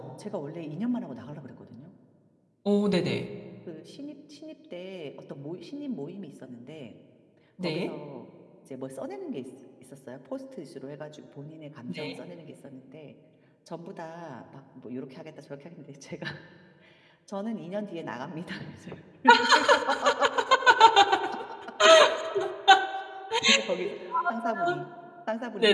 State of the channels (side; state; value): both; identical; correlation 1.00